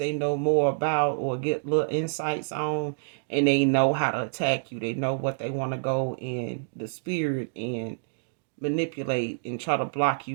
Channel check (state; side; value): silent; left; digital silence